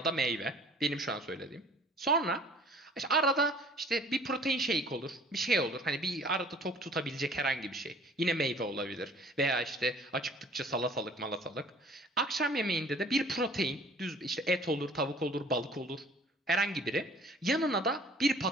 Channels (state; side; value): normal; both; correlation 0.52